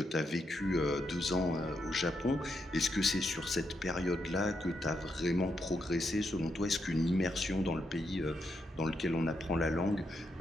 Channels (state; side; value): normal; both; correlation 0.81